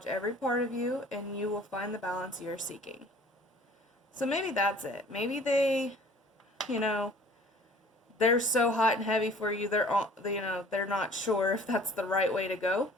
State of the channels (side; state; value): both; normal; correlation 0.50